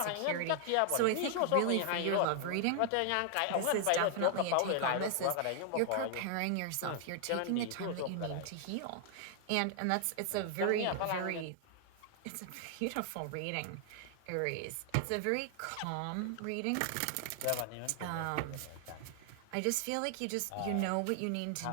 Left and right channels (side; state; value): both; different; correlation 0.00